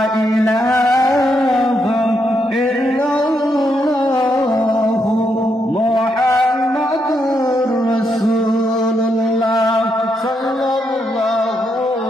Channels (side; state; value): both; normal; correlation 0.79